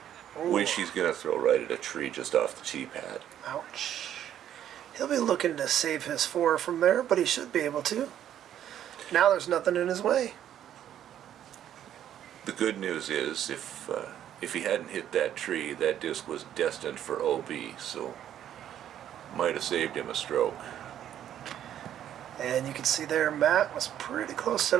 he's going to throw right at a tree just off the tee pad. Ouch. He'll be looking to save his 4 from there, but he should be able to. Now there's nothing in his way. The good news is, if he hadn't hit that tree, that disc was destined for OB, so might have saved him a stroke. And you can see there, Matt was pretty close to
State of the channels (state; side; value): quieter; left; 10.7 dB